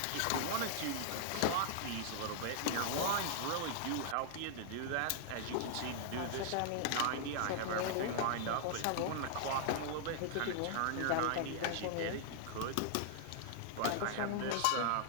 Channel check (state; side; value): different; both; correlation -0.01